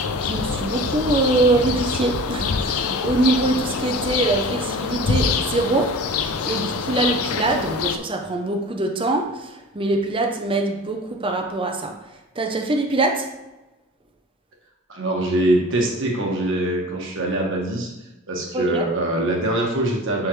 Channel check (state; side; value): normal; both; correlation 0.39